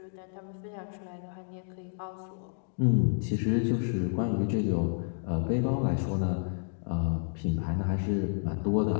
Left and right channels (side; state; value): right; silent; digital silence